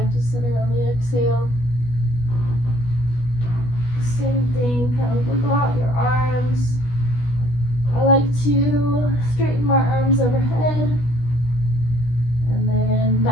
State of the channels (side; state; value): right; late; 16 ms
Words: to center on the exhale. Same thing, kind of wiggle out your arms. I like to straighten my arms overhead and then